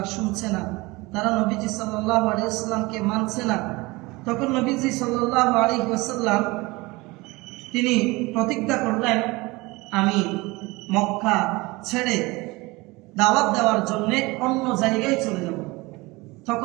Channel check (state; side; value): quieter; left; 22.9 dB